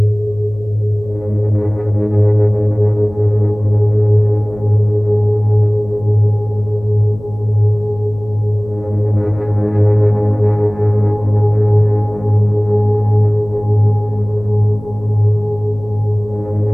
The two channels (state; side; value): noise; left; hum, 19 dB below the sound